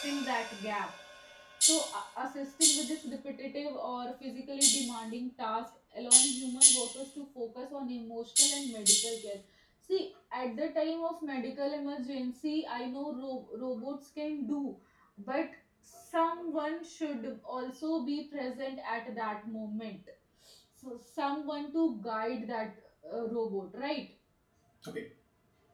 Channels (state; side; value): identical; both; correlation 1.00